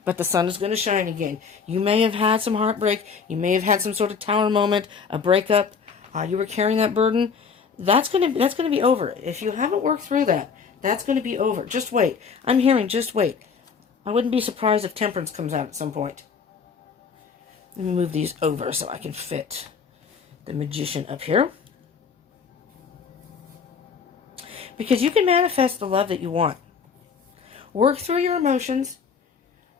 but the sun is going to shine again. You may have had some heartbreak. You may have had some sort of tower moment, a breakup. You were carrying that burden. That's going to be over. If you haven't worked through that, that's going to be over. Just wait. I'm hearing just wait. I wouldn't be surprised if Temperance comes out at some point. Let me move these over so I can fit the Magician up here. Because you can manifest the love that you want. Work through your emotions.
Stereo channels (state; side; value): quieter; right; 6.0 dB